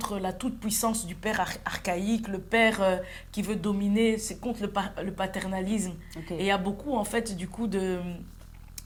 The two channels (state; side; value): identical; both; correlation 1.00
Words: la toute-puissance du père archaïque, le père qui veut dominer, c'est contre le paternalisme. Okay. Et il y a beaucoup, en fait, du coup, de